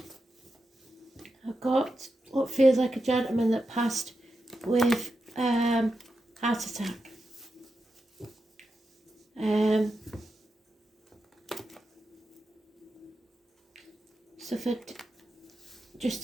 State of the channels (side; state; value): both; normal; correlation 0.88